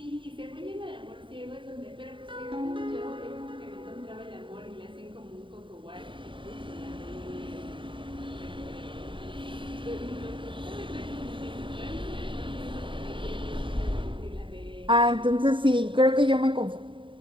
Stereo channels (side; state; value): left; late; 0.24 ms